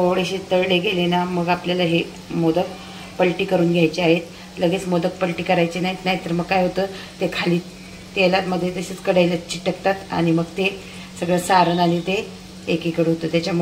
तळले गेले ना मग आपल्याला हे मोदक पलटी करून घ्यायचे आहेत. लगेच मोदक पलटी करायचे नाहीत, नाहीतर मग काय होतं ते खाली तेलामध्ये तसेच कढईला चिटकतात आणि मग ते सगळं सारण आणि ते एकीकडे होतं.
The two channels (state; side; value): identical; both; correlation 1.00